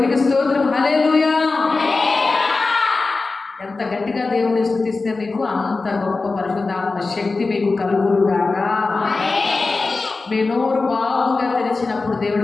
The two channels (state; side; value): quieter; right; 3.8 dB